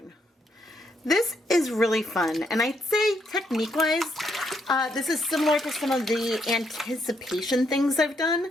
This is really fun, and I'd say technique-wise, this is similar to some of the anticipation things I've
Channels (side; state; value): both; normal; correlation 0.75